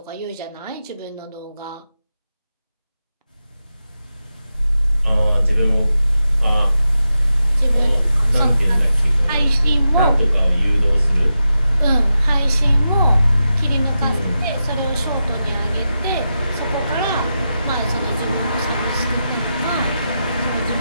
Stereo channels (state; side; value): inverted; both; correlation -0.89